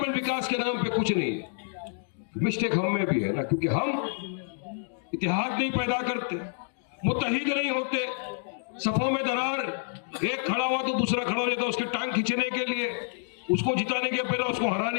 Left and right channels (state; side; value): silent; right; digital silence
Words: विकास के नाम पे कुछ नहीं है। मिस्टेक हम में भी है ना, क्योंकि हम इतिहाद नहीं पैदा करते, मुत्तहिद नहीं होते, सफों में दरार, एक खड़ा हुआ तो दूसरा खड़ा हो जाता है उसके टांग खींचने के लिए, उसको जिताने के पहले उसको